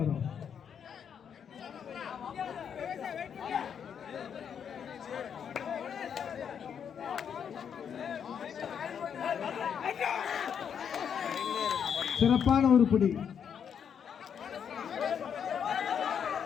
சிறப்பான ஒரு புடி.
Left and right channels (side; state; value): right; quieter; 7.8 dB